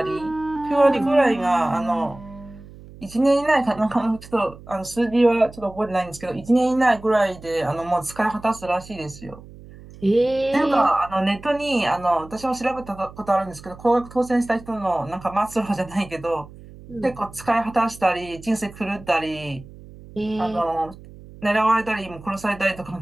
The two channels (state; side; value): noise; right; hum, 19 dB below the sound